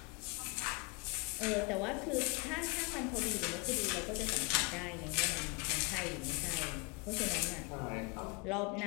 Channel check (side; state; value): right; quieter; 30.8 dB